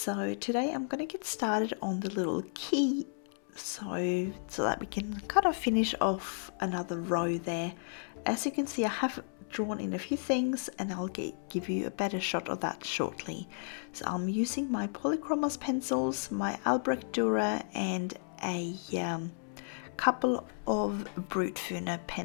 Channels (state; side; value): silent; right; 56 dB below the other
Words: today I'm going to get started on the little key so that we can kind of finish off another row there. As you can see, I have drawn in a few things and I'll give you a better shot of that shortly. So I'm using my Polychromos pencils, my Albrecht Dürer, and a couple of Brutfuner